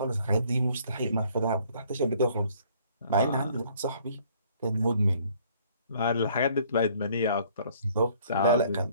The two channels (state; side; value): inverted; both; correlation -0.60